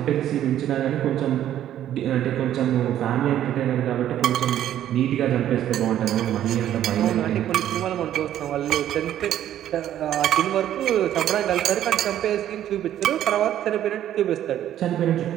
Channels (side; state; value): left; quieter; 11.6 dB